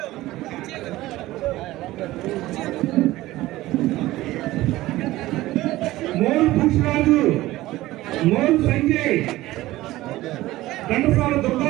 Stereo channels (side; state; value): left; quieter; 17.0 dB